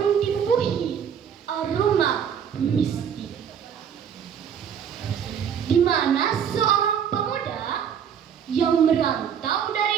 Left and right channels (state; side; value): quieter; left; 8.1 dB